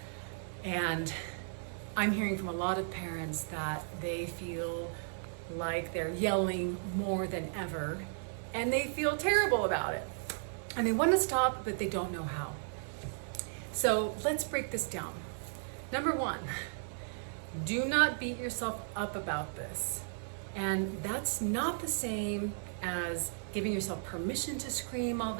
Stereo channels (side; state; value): left; silent; digital silence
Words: And I'm hearing from a lot of parents that they feel like they're yelling more than ever, and they feel terrible about it. And they want to stop, but they don't know how. So let's break this down. Number one, do not beat yourself up about this. And that's not the same as giving yourself permission to scream all